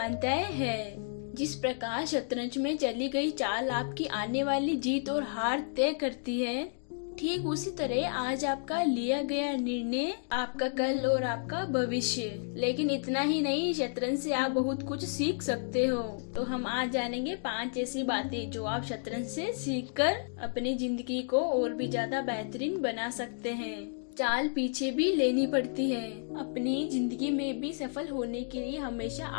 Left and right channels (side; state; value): right; silent; digital silence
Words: हैं। जिस प्रकार शतरंज में चली गई चाल आपकी आने वाली जीत और हार तय करती है, ठीक उसी तरह आज आपका लिया गया निर्णय आपका कल और आपका भविष्य। लेकिन इतना ही नहीं, शतरंज से आप बहुत कुछ सीख सकते हो। तो हम आज जानेंगे 5 ऐसी बातें जो आप शतरंज से सीखकर अपनी जिंदगी को और भी ज्यादा बेहतरीन बना सकते हैं। चाल पीछे भी लेनी पड़ती है। अपनी जिंदगी में भी सफल होने के लिए हमेशा